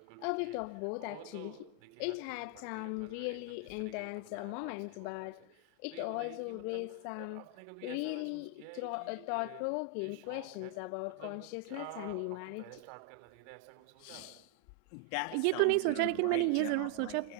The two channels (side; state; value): both; different; correlation 0.00